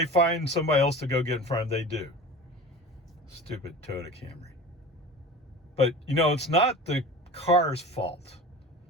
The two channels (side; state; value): both; normal; correlation 0.36